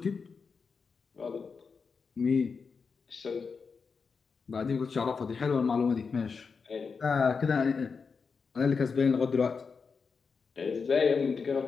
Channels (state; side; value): quieter; right; 5.3 dB